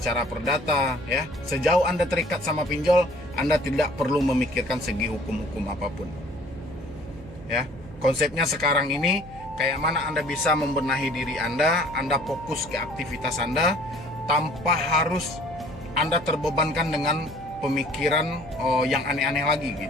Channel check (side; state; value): right; noise; hum, 18 dB below the sound